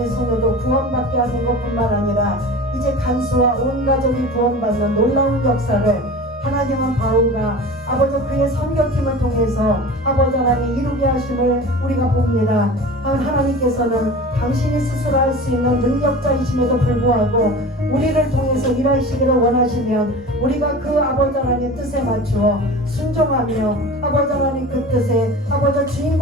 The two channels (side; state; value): both; normal; correlation 0.36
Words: 소녀도 구원받게 하는 것뿐만 아니라 이제 간수와 온 가족이 구원받는 놀라운 역사를 하나님은 바울과 아버지 그의 선교팀을 통해서 아버지 하나님 이루게 하심을 우리가 봅니다. 하나님께서는 당신이 스스로 할 수 있는 능력자이심에도 불구하고 우리를 통해서 일하시기를 원하시면 우리가 그 아버지 하나님의 뜻에 맞추어 순종하며 아버지 하나님 그 뜻에 아버지